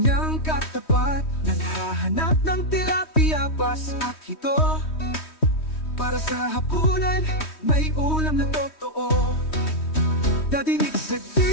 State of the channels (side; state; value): right; late; 3.2 ms